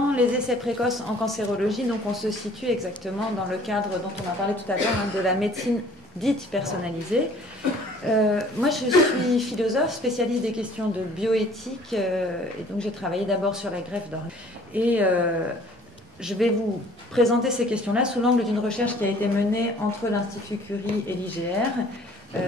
les essais précoces en cancérologie. Donc, on se situe exactement dans le cadre dont on a parlé tout à l'heure, de la médecine dite personnalisée. Moi, je suis philosophe, spécialiste des questions de bioéthique, et donc j'ai travaillé d'abord sur la greffe d'organes. Et je vais vous présenter ces questions-là sous l'angle d'une recherche qui a été menée entre l'Institut Curie et l'IGR,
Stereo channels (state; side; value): normal; both; correlation 0.54